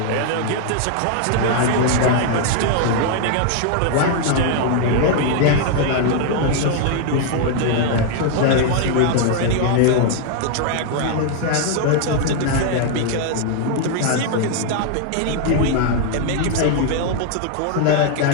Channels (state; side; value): different; both; correlation 0.00